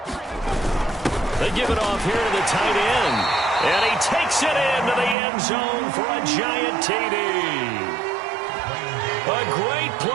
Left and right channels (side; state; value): left; drops out; at 5.2 s